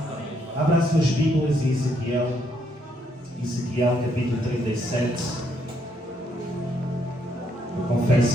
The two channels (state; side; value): normal; both; correlation 0.73